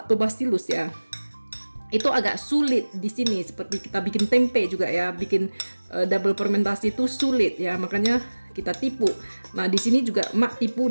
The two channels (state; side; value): inverted; both; correlation -1.00